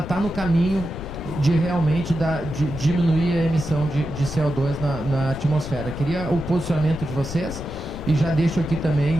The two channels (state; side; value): noise; left; rumble, 9 dB below the sound